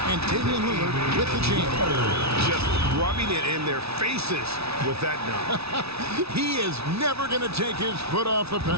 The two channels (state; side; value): late; left; 0.78 ms